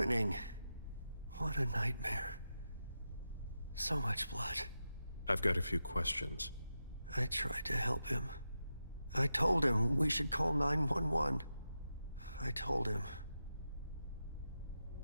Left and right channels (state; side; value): inverted; both; correlation -0.89